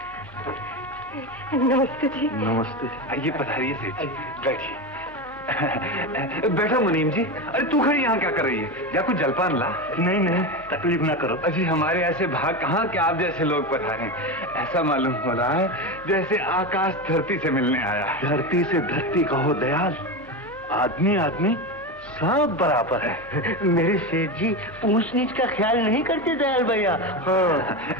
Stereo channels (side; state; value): both; normal; correlation 0.19